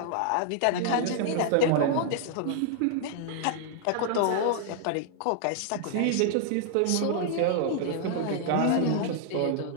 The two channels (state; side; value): different; both; correlation -0.01